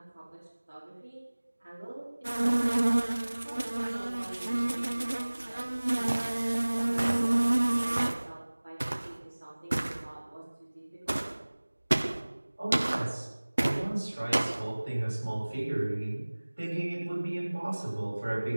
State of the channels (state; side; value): inverted; both; correlation -1.00